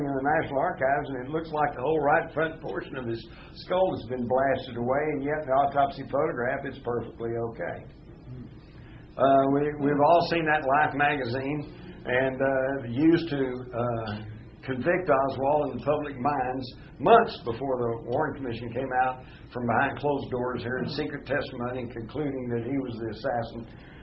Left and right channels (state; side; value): identical; both; correlation 1.00